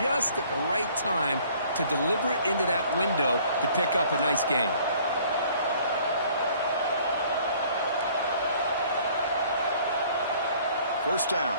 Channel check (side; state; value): both; inverted; correlation -0.56